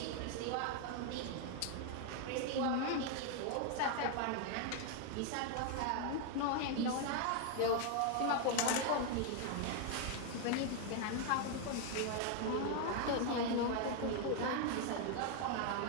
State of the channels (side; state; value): both; different; correlation 0.01